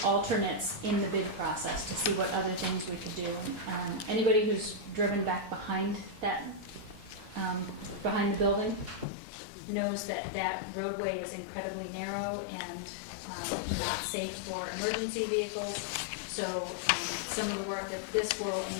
alternates in the bid process to see what other things we could do. Anybody who's driven back behind that, behind the building, knows that that roadway is incredibly narrow and not safe for emergency vehicles. So some of the work that this will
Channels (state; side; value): drops out; right; at 9.1 s